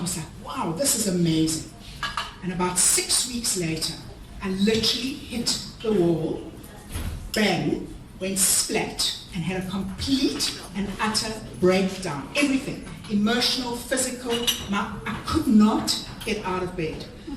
like, wow, this is amazing. And about 6 weeks later, I literally hit the wall, bang, went splat and had a complete and utter breakdown. Everything, emotional, physical, I could not get out of bed.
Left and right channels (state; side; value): identical; both; correlation 1.00